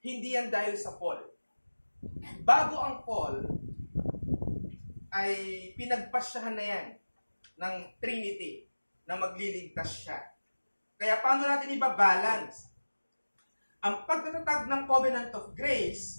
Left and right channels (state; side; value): inverted; both; correlation -1.00